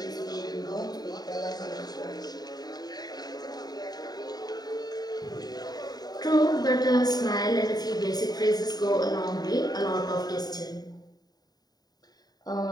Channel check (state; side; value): late; right; 0.19 ms